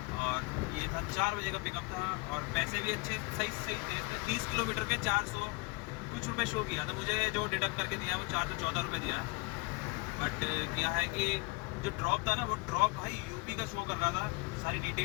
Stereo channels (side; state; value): right; quieter; 26.7 dB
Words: और ये था 4 बजे का पिकअप था और पैसे भी अच्छे सही थे। 30 किलोमीटर के 400 कुछ रुपये शो किया था मुझे, जो डिडक्ट करके दिया वो 414 रुपये दिया है। बट क्या है कि जो ड्रॉप था ना, वो ड्रॉप भाई यूपी का शो कर रहा था। सारी